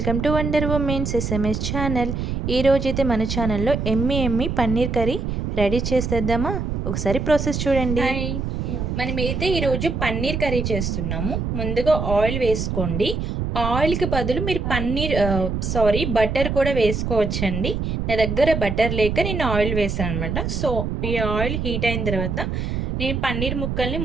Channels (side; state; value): right; noise; rumble, 2 dB below the sound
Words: to wonder women's SMS channel. ఈరోజైతే మన ఛానల్లో ఎమ్మి పన్నీర్ కర్రీ రెడీ చేసేద్దామా? ఒకసారి ప్రాసెస్ చూడండి. హాయ్, మనమైతే ఈరోజు పన్నీర్ కర్రీ చేస్తున్నాము. ముందుగా ఆయిల్ వేసుకోండి. ఆయిల్కి బదులు మీరు బటర్ కూడా వేసుకోవచ్చండి. నా దగ్గర బటర్ లేక నేను ఆయిల్ వేసాను అనమాట. సో ఈ ఆయిల్ హీట్ అయిన తర్వాత నేను పన్నీర్ ముక్కల్ని